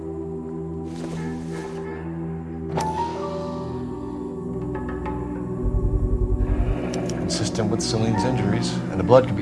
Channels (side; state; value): both; identical; correlation 1.00